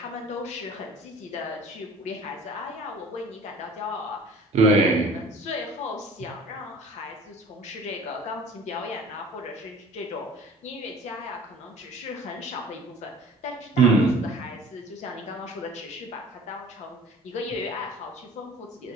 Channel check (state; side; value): normal; both; correlation 0.46